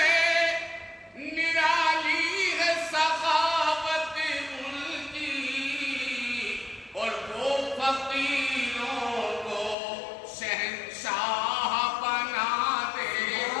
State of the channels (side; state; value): right; drops out; at 9.8 s